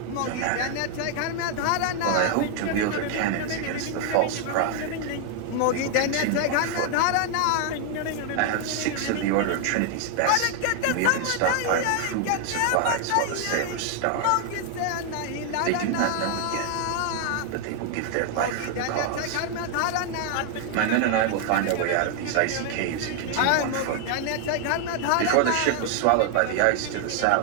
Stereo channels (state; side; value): different; both; correlation 0.00